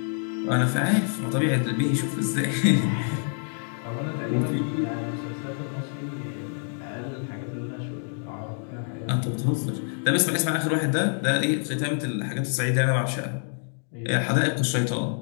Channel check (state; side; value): silent; right; 60 dB below the other